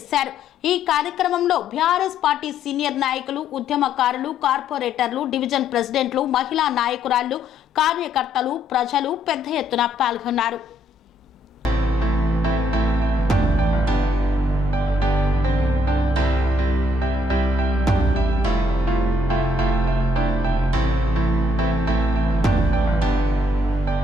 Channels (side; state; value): both; normal; correlation 0.70